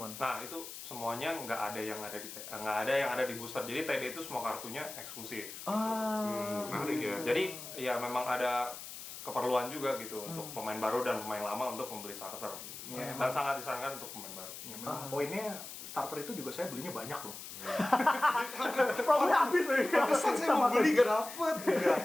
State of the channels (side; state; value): left; noise; hiss, 11 dB below the sound